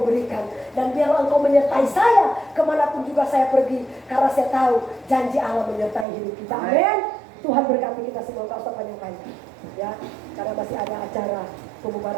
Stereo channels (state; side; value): drops out; left; at 6.1 s